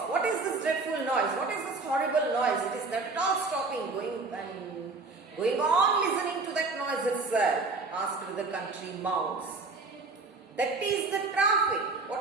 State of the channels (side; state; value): left; quieter; 3.8 dB